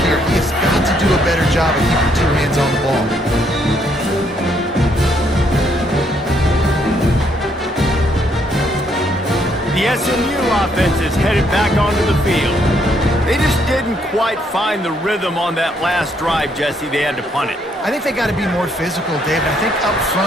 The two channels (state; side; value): normal; both; correlation 0.71